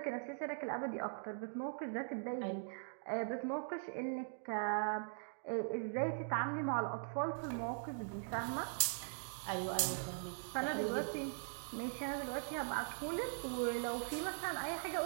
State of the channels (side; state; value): left; silent; digital silence